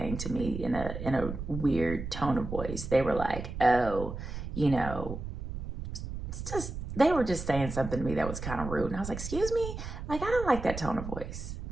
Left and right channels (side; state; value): right; noise; rumble, 7 dB below the sound